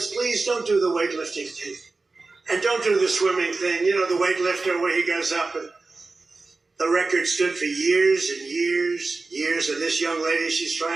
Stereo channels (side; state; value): left; quieter; 3.7 dB